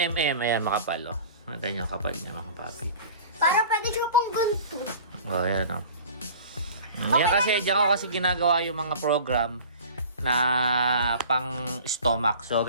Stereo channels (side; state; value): both; inverted; correlation -0.42